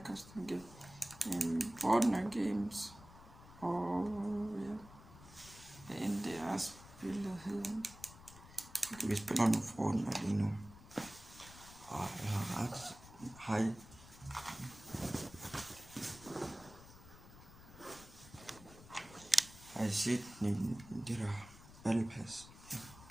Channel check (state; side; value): noise; left; rumble, 18 dB below the sound